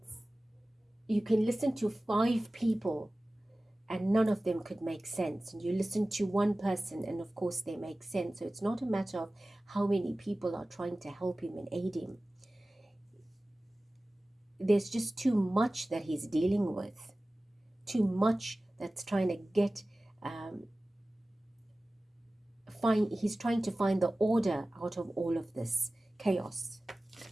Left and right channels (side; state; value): both; normal; correlation 0.97